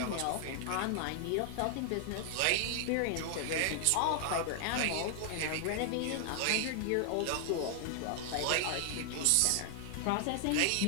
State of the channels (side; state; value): both; different; correlation 0.00